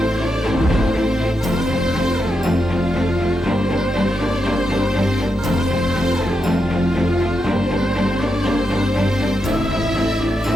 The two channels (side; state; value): both; normal; correlation 0.85